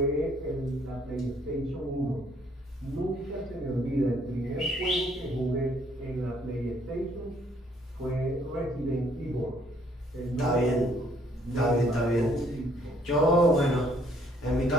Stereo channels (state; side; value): normal; both; correlation 0.64